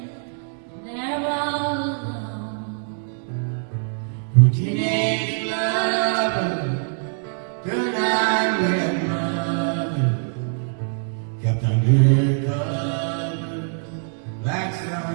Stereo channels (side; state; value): left; silent; 57 dB below the other